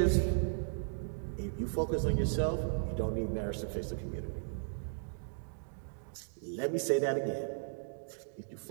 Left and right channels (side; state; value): left; silent; digital silence